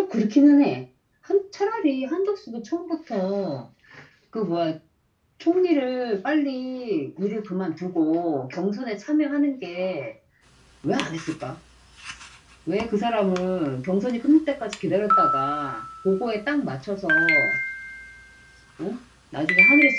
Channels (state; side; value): identical; both; correlation 1.00